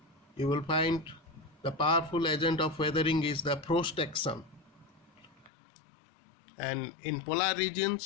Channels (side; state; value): right; drops out; at 5.5 s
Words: you will find the powerful agent of weathering is the frost action. And in polar